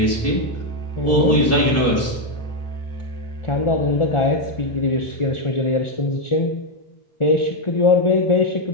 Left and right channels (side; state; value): right; late; 1.4 ms